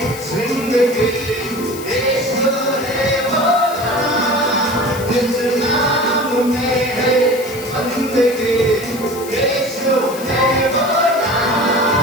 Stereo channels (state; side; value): noise; left; hiss, 14 dB below the sound